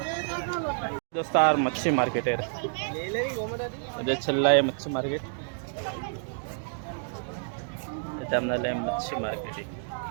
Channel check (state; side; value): silent; left; digital silence